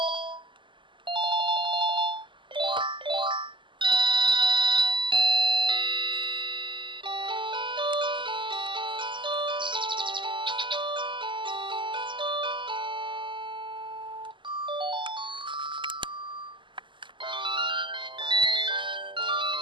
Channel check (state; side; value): late; left; 0.24 ms